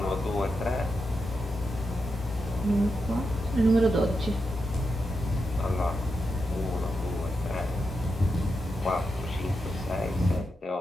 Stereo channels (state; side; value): normal; both; correlation 0.87